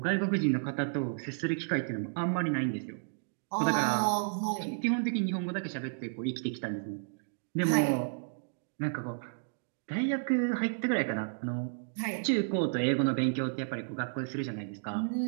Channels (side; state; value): left; silent; digital silence